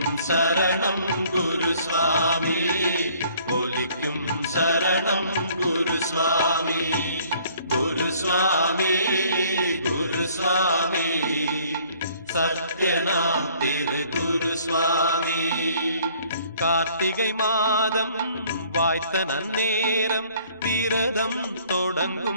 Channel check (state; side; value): inverted; both; correlation -0.58